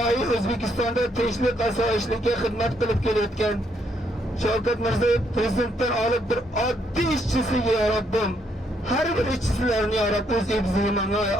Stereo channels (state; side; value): normal; both; correlation 0.73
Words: O'zbekistonda tinchlik osoyishlikka xizmat qilib kelayotgan Shavkat Mirziyoyev prezidentdan olib bir oddiy ishchisiga ya Rabbim, har bir ishchilarni ya Rabb o'z ibzimanga